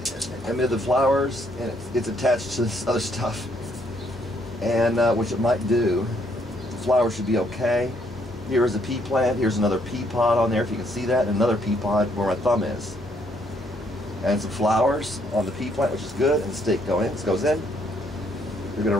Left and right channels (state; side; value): normal; both; correlation 0.70